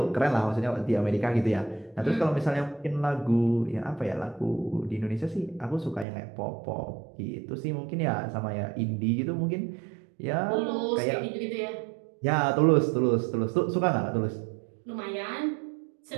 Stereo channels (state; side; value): drops out; left; at 6.1 s